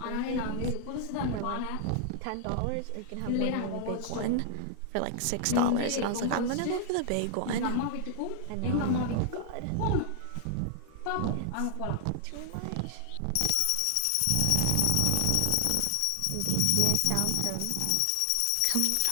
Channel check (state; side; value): different; both; correlation 0.00